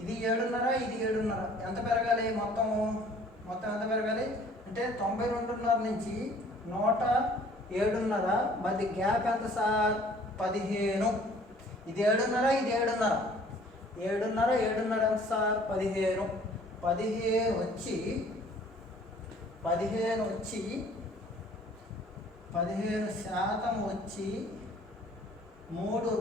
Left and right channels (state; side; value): normal; both; correlation 0.54